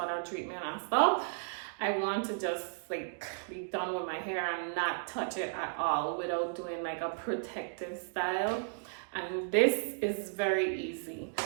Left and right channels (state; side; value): silent; left; digital silence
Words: treatment and stuff. I want to just like be done with my hair and not touch it at all without doing like a protective style. And this is very easy.